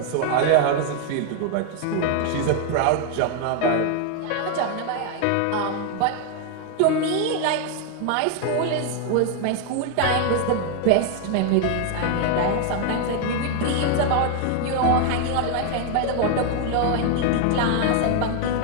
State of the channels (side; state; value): both; different; correlation 0.01